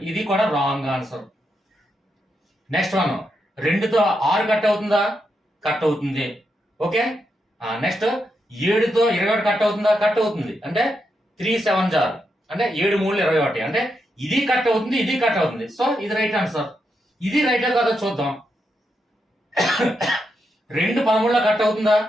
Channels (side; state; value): both; normal; correlation 0.83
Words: ఇది కూడా రాంగ్ ఆన్సర్. నెక్స్ట్ 2తో 6 కట్ అవుతుందా? కట్ అవుతుంది. ఓకే, నెక్స్ట్ 7తో 21 కట్ అవుతుందా? కట్ అవుతుంది. అంటే 3 7 జార్ అంటే 7 3 21. అంటే ఇది కట్ అవుతుంది, ఇది కట్ అవుతుంది. సో ఇది రైట్ ఆన్సర్. ఇది రైట్ కాదో చూద్దాం. 2 13లో కట్ అవుతుందా?